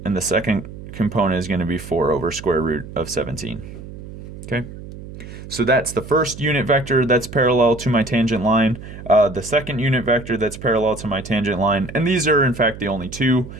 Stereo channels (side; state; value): right; noise; hum, 13 dB below the sound